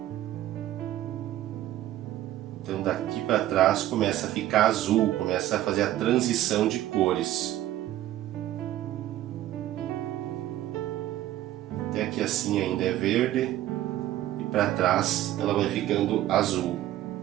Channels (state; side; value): quieter; left; 13.8 dB